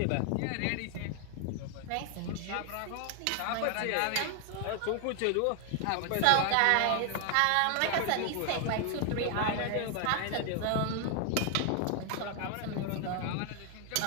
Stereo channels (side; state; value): both; different; correlation 0.00